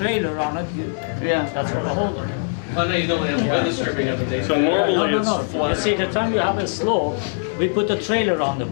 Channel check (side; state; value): right; silent; digital silence